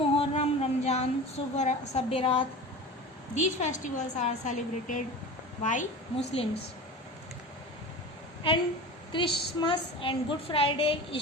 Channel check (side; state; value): both; normal; correlation 0.33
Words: Ramzan, Sabbarat, these festivals are celebrated by Muslims. And Christmas and Good Friday,